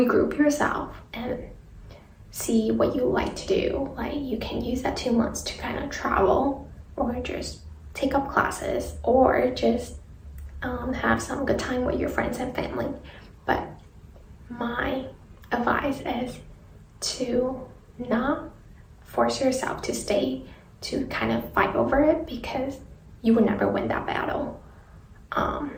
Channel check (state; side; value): identical; both; correlation 1.00